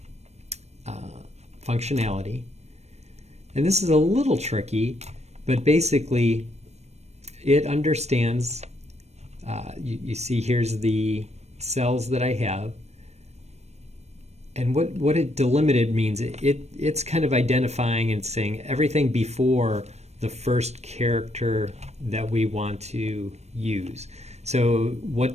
functionality. And this is a little tricky, but basically it understands, you see here's the cells that I have. And what it delimited means, it's kind of identifying and saying everything before the first character that we want to use. So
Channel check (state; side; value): late; left; 0.32 ms